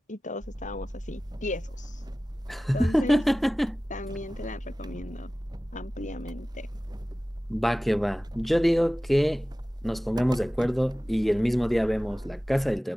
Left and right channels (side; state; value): both; normal; correlation 0.96